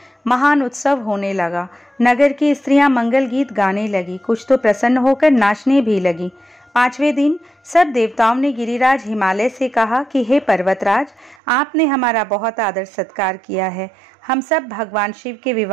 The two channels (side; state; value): left; drops out; at 11.4 s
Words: महान उत्सव होने लगा। नगर की स्त्रियां मंगल गीत गाने लगी, कुछ तो प्रसन्न होकर नाचने भी लगी। पांचवें दिन सब देवताओं ने गिरिराज हिमालय से कहा कि हे पर्वतराज, आपने हमारा बहुत आदर सत्कार किया है। हम सब भगवान शिव के